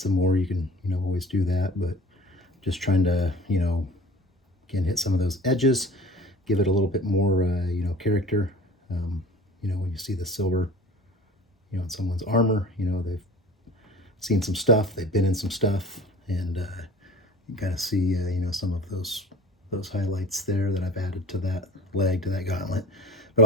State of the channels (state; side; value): normal; both; correlation 0.43